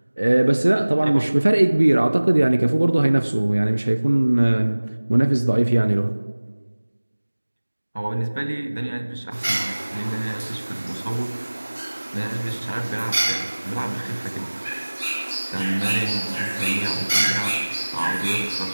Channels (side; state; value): both; inverted; correlation -1.00